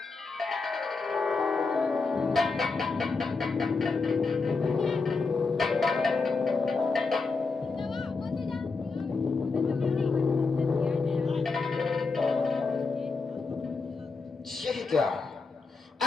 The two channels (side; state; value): right; quieter; 4.2 dB